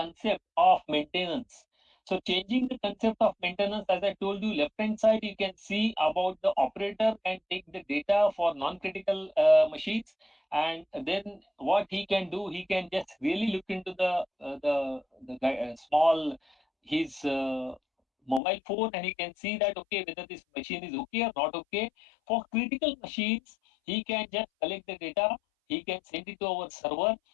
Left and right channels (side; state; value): right; drops out; at 18.4 s